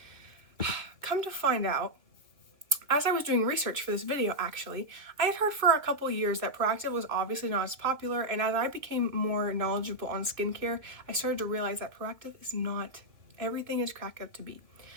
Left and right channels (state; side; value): late; left; 2.5 ms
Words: come to find out, as I was doing research for this video, actually, I had heard for a couple years that Proactiv was obviously not as popular, and as I became more knowledgeable on skincare, I started to realize that Proactiv is not everything is cracked up to be.